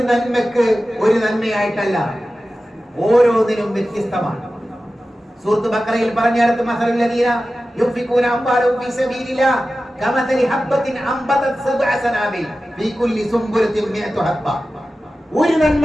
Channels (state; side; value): normal; both; correlation 0.94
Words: നന്മക്ക് ഒരു നന്മയായിട്ടല്ല, ഓരോന്നിനും വ്യത്യസ്തമാണ്. സൂറത്ത് ബഖറയിൽ പറഞ്ഞിടത്ത് മസലുൽ ലദീന യുൻഫിഖൂന അംവാലഹും ഫീ സബീലില്ലാഹ് കമസലി ഹബ്ബത്തിൻ അംബതത് സബ്അ സനാബിൽ ഫീ കുല്ലി സുംബുലത്തിൻ മിഅതു ഹബ്ബ. ഒരു